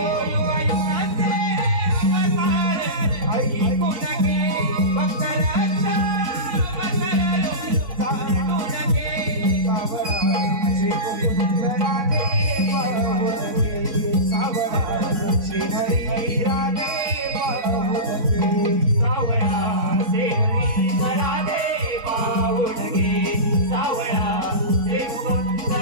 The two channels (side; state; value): left; late; 4.0 ms